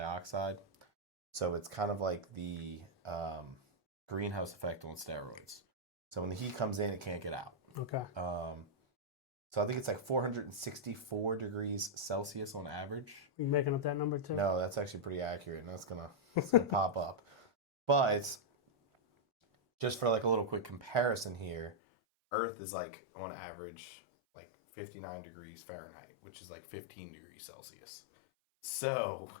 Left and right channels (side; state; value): right; drops out; at 21.8 s